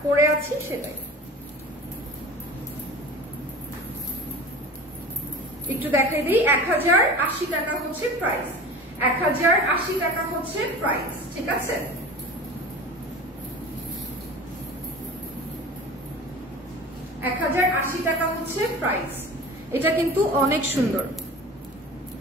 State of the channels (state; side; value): normal; both; correlation 0.36